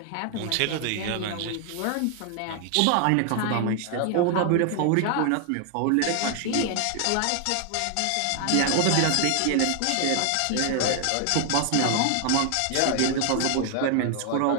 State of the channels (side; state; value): both; different; correlation 0.00